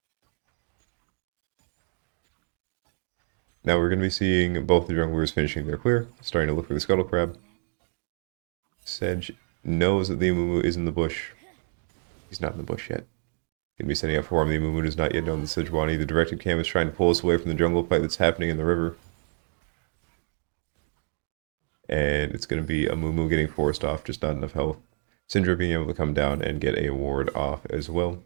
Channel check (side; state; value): left; silent; digital silence